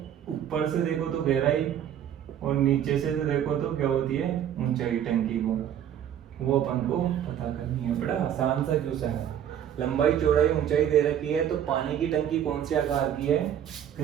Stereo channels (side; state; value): left; quieter; 10.0 dB